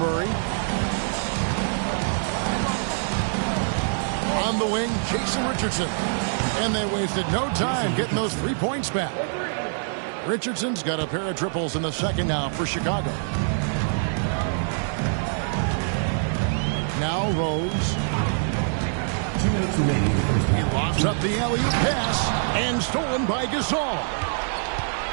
On the wing, Jason Richardson. And they wasted no time getting those 3 points back. Richardson's got a pair of triples in the second now for Chicago. Now Rose. 2 minutes remaining. He lofts up the alley-oop pass and stolen by Gasol.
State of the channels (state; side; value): silent; left; 62 dB below the other